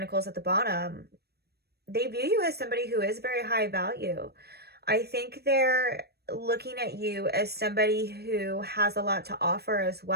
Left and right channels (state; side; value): late; left; 0.47 ms